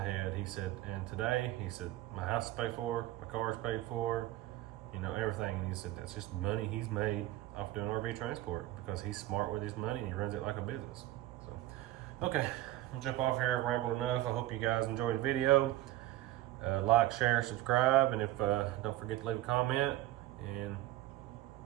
He said, and today, he said, my house is paid for, my car is paid for, everything. And he said, that's just money he's made off doing RV transport, because he's smart with his money and he runs it like a business. So, okay, I'll jump off here. I've rambled enough. I hope you guys enjoyed the video. Like, share, subscribe, and if don't forget to leave a comment, and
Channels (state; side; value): quieter; left; 15.5 dB